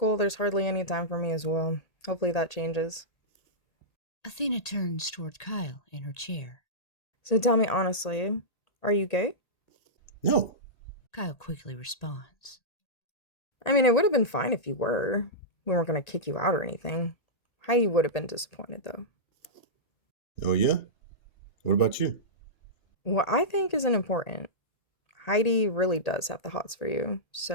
there's hardly any time for me as well. Hopefully that changes. Athena turns toward Kyle in her chair. So tell me honestly, are you gay? No. Kyle quickly responds. I mean, it would have been fine if you were. We weren't going to kick you out or anything. Heidi would have been disappointed, though. Oh, yeah? What about you? What I think isn't important. Heidi really does have the hots for you,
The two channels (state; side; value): late; right; 1.8 ms